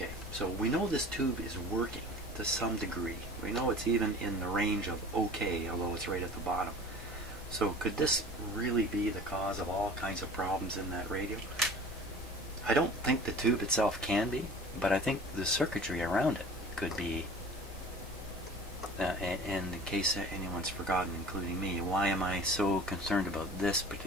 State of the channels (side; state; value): both; normal; correlation 0.42